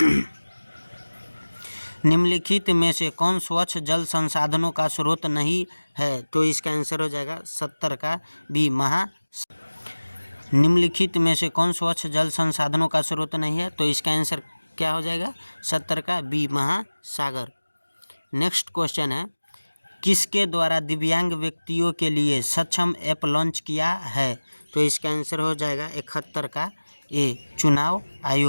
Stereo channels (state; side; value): inverted; both; correlation -1.00